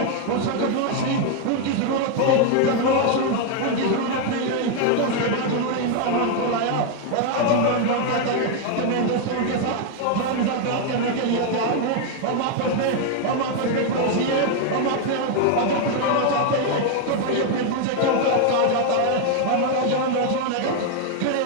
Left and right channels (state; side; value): different; both; correlation 0.00